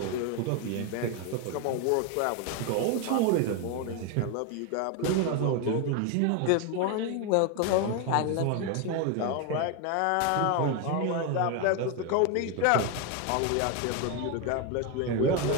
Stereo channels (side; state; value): both; different; correlation 0.02